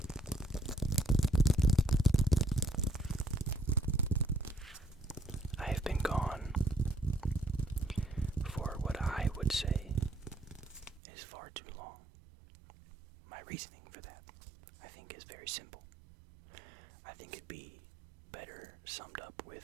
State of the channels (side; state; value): left; drops out; at 11.0 s